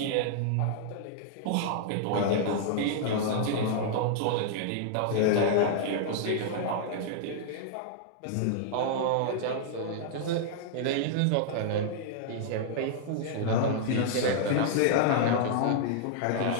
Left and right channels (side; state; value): both; different; correlation -0.01